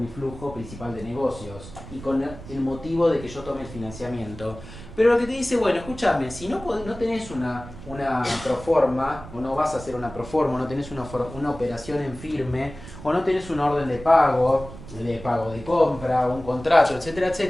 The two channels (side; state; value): right; noise; rumble, 15 dB below the sound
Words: flujo principal de negocios y con el motivo de que yo tome el financiamiento. Pero lo que te dice, bueno, escúchame, si no, no tenés una proforma, o no vas a hacer una proforma, o no tenés una operación en firme, o no tenés una orden de pago de compra, un contrato, etcétera,